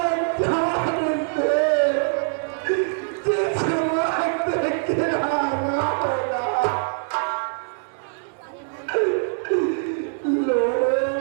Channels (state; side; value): silent; left; digital silence